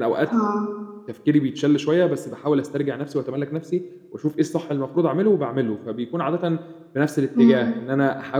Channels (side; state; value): both; identical; correlation 1.00